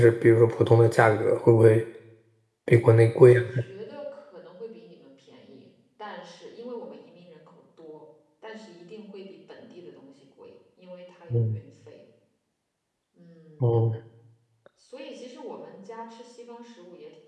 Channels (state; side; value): identical; both; correlation 1.00